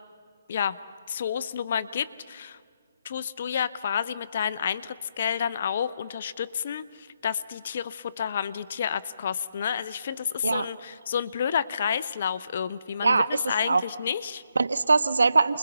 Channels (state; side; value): inverted; both; correlation -0.79